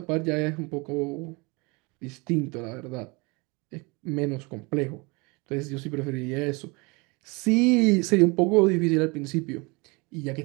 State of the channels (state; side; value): quieter; left; 27.6 dB